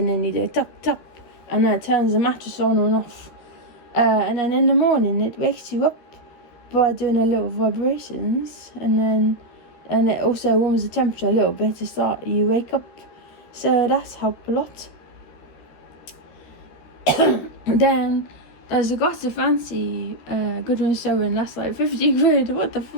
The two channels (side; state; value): right; late; 13 ms